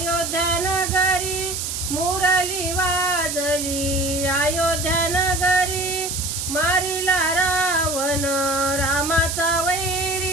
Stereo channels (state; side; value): noise; right; hiss, 3 dB below the sound